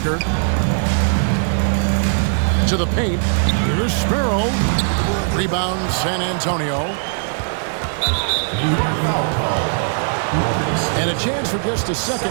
To the paint. Here's Sparrow. Rebound San Antonio. New York foul call. And a chance for just a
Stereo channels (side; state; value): left; silent; digital silence